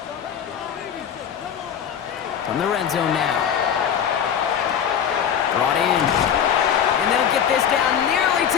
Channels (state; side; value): quieter; right; 8.5 dB